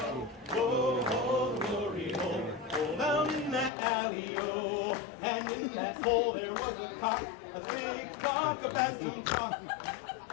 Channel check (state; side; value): drops out; right; at 3.7 s